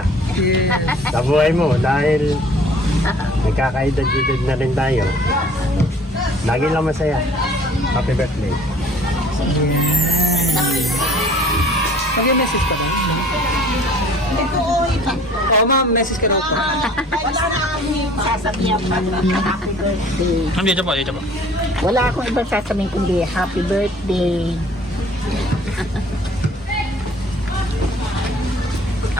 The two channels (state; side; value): normal; both; correlation 0.52